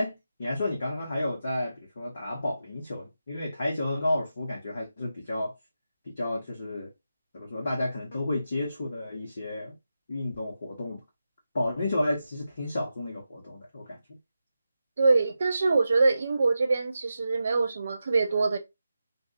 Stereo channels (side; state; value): both; inverted; correlation -0.90